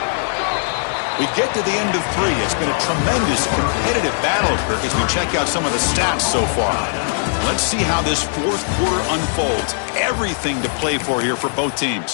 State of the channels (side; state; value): right; silent; digital silence